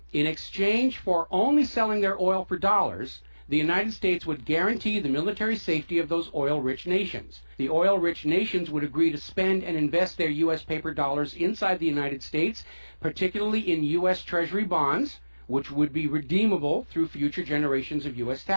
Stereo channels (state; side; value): inverted; both; correlation -1.00